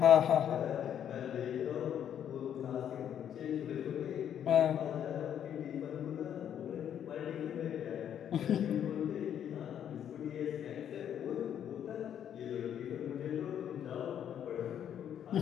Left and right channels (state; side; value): quieter; right; 9.5 dB